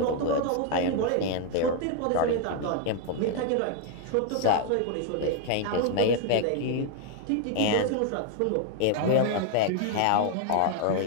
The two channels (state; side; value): different; both; correlation 0.00